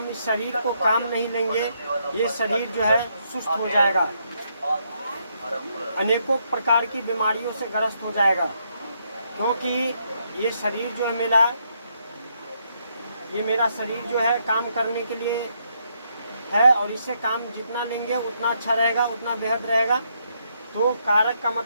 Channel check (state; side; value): inverted; both; correlation -0.76